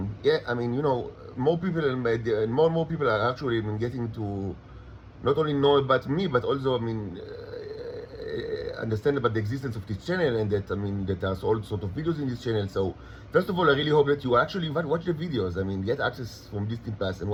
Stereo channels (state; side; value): identical; both; correlation 1.00